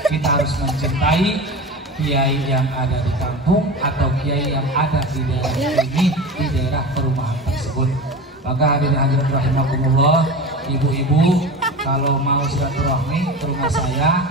Kita harus mencintai kiai yang ada di kampung atau kiai yang ada di daerah ini, di daerah perumahan tersebut. Maka hadirin hadirat rahimakumullah, ibu-ibu kalau mau silaturahmi ke rumah saya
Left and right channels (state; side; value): normal; both; correlation 0.30